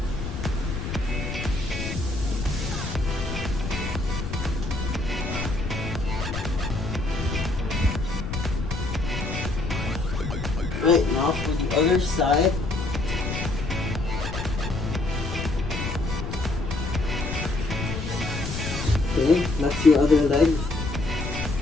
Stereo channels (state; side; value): noise; left; rumble, 5 dB below the sound